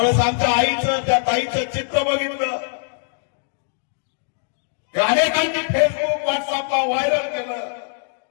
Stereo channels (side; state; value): right; silent; digital silence